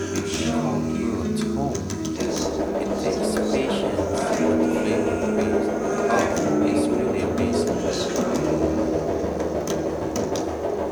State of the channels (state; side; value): identical; both; correlation 1.00